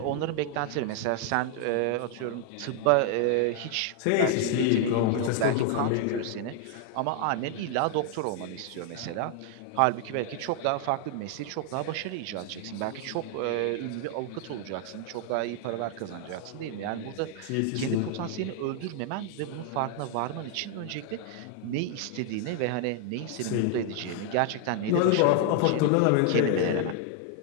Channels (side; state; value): both; different; correlation 0.00